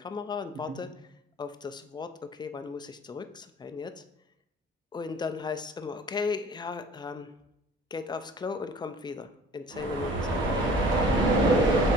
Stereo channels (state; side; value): normal; both; correlation 0.49